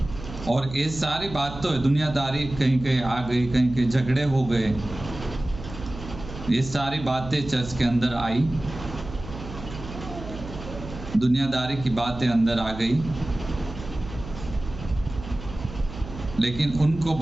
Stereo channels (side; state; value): right; noise; hum, 12 dB below the sound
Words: और ये सारी बात तो है। दुनियादारी कहीं कहीं आ गई, कहीं कहीं झगड़े हो गए, ये सारी बातें चर्च के अंदर आई, दुनियादारी की बातें अंदर आ गई। लेकिन उनको